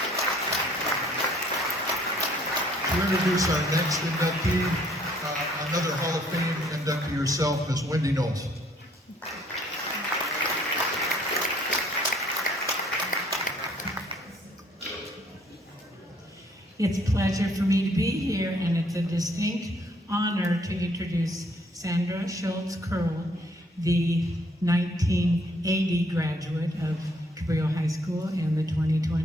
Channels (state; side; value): normal; both; correlation 0.63